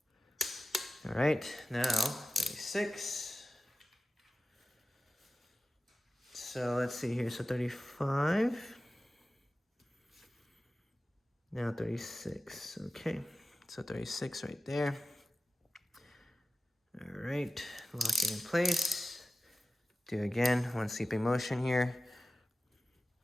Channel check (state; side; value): normal; both; correlation 0.94